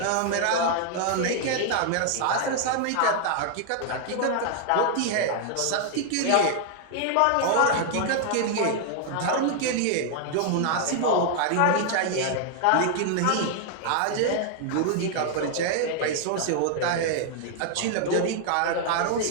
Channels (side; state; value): both; different; correlation 0.00